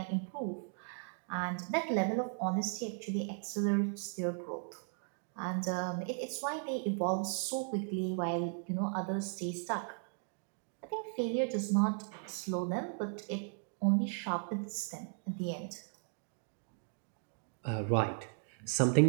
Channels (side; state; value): left; silent; 53 dB below the other